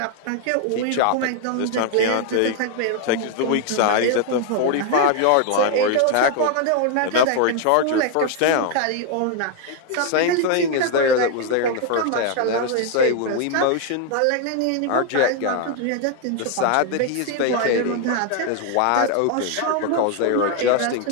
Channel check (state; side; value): different; both; correlation 0.01